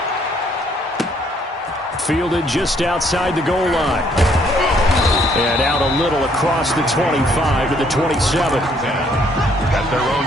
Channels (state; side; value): normal; both; correlation 0.66